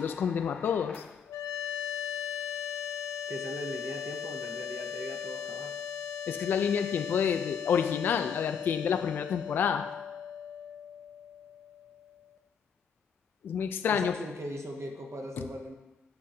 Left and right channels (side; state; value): right; quieter; 6.7 dB